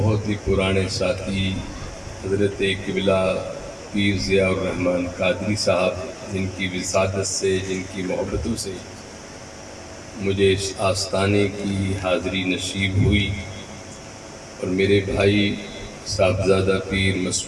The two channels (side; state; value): both; identical; correlation 1.00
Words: ہی پرانے ساتھی حضرت قبلہ پیر ضیاء الرحمن قادری صاحب، جن کی وسادت سے، جن کی محبتوں سے مجھے اس آستانے کی حاضری نصیب ہوئی، اور میرے بھائی صاحبزادہ پیر